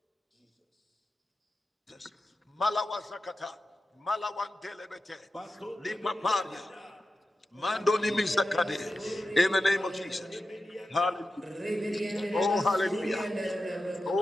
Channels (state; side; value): normal; both; correlation 0.92